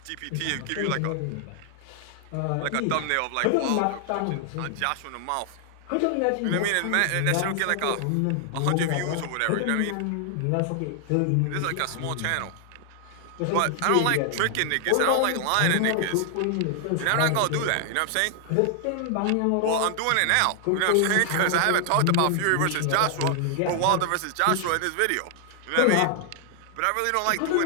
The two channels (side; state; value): both; different; correlation 0.00